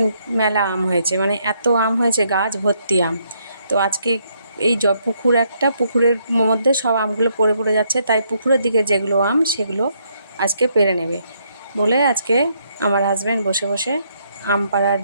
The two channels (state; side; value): inverted; both; correlation -0.73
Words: মেলা আম হয়েছে, মানে এত আম হয়েছে, গাছ ভর্তি আম। তো আজকে এই পুকুরের মধ্যে সব আমগুলো পড়ে পড়ে যাচ্ছে, তাই পুকুরের দিকে যেগুলো আম সেগুলো আজকে পেড়ে নেবে বলে আজকে আমার হাজব্যান্ড বসে বসে আম পাড়ার